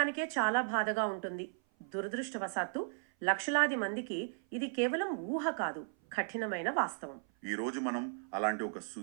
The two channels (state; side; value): silent; left; 54 dB below the other